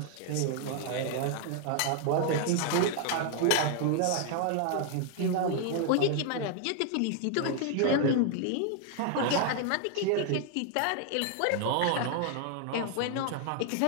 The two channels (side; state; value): both; different; correlation 0.00